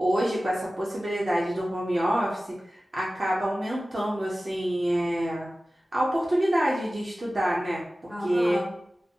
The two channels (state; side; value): normal; both; correlation 0.96